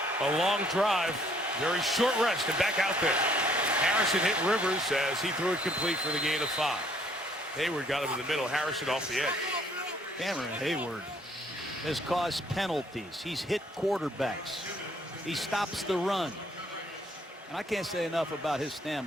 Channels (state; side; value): normal; both; correlation 0.63